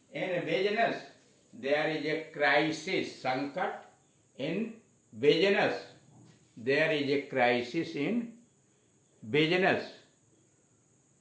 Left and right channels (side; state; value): both; identical; correlation 1.00